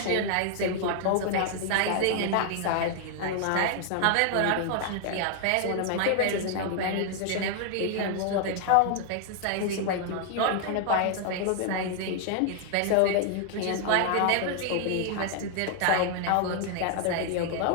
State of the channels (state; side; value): different; both; correlation 0.00